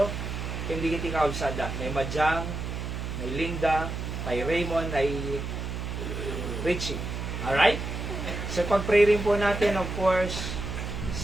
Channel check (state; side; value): noise; right; hum, 5 dB below the sound